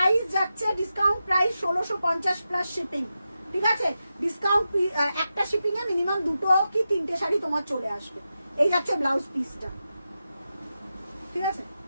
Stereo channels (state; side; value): inverted; both; correlation -0.90